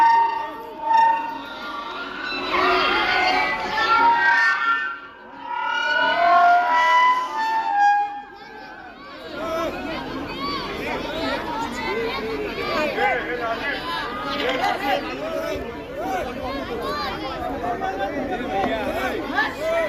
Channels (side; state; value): both; identical; correlation 1.00